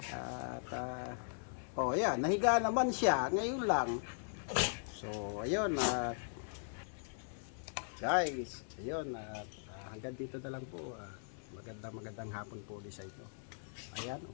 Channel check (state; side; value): silent; right; 52 dB below the other